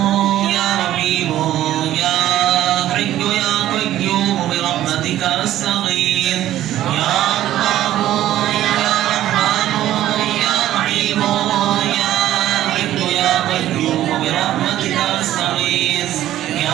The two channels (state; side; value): quieter; left; 13.2 dB